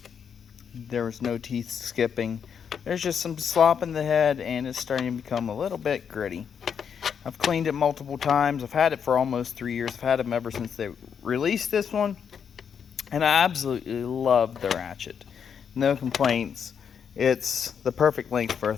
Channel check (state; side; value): quieter; right; 7.3 dB